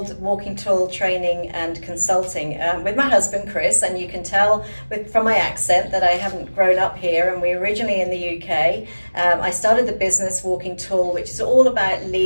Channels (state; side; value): inverted; both; correlation -1.00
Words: Walking Tall Training and Consulting with my husband, Chris, and you can tell from my accent that I haven't grown up here, and we're originally in the UK. I started the business Walking Tall, which is all about